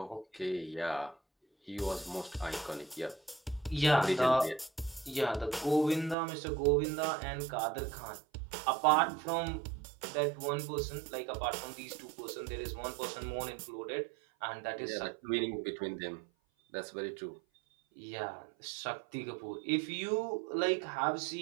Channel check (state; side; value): drops out; left; at 6.2 s